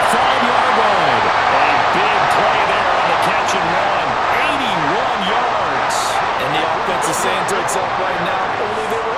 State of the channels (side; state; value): both; identical; correlation 1.00